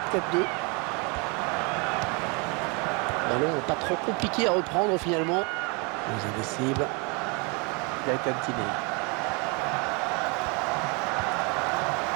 Ballon pas trop compliqué à reprendre finalement. Les indécibles. Gaëtan Tiné.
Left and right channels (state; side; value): quieter; left; 31.3 dB